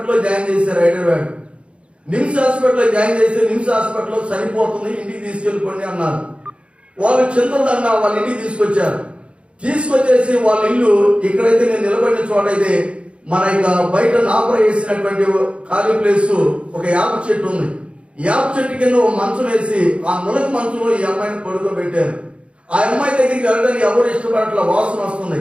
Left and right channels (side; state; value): left; late; 0.059 ms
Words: జాయిన్ చేశారు హైదరాబాద్. నిమ్స్ హాస్పిటల్లో జాయిన్ చేసి నిమ్స్ హాస్పిటల్లో చనిపోతుంది, ఇంటికి తీసుకెళ్ళిపోండి అన్నారు. వాళ్ళు చింతదండ వాళ్ళ ఇంటికి తీసుకొచ్చేసి వాళ్ళ ఇల్లు ఇక్కడైతే నేను నిలబడిన చోటైతే మన ఇక బయట నాపర వేసినటువంటి ఖాళీ ప్లేస్ ఒక యాప చెట్టు ఉంది. యాప చెట్టు కింద ఒక మంచం వేసి ఆ నులక మంచంలో ఈ అమ్మాయిని పడుకోబెట్టారు. ఆ అమ్మాయి దగ్గరికి వెళ్ళడానికి ఎవరు ఇష్టపడట్ల, వాసన వస్తుంది,